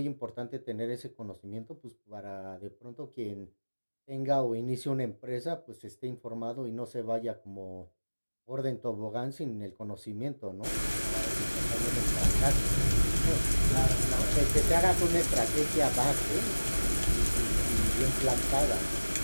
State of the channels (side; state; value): both; inverted; correlation -1.00